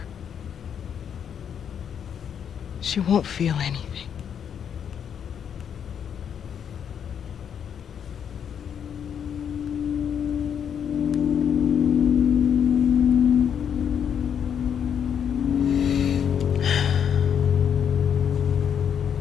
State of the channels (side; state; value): right; quieter; 8.2 dB